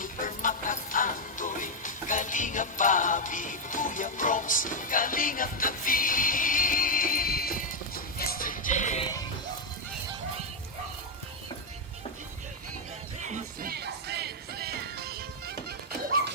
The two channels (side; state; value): both; normal; correlation 0.00